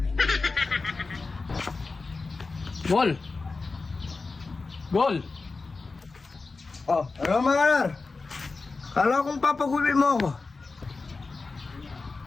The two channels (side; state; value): right; quieter; 4.0 dB